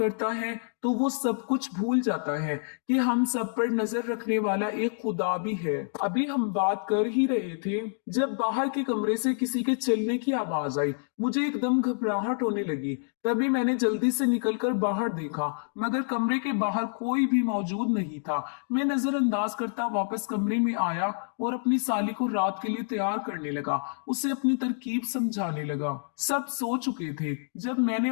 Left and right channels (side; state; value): right; silent; digital silence